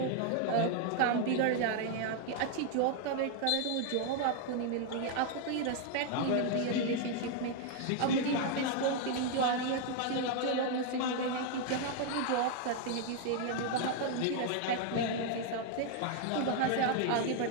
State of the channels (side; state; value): both; different; correlation 0.00